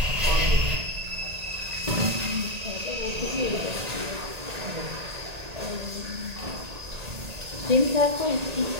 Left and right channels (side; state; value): left; late; 1.8 ms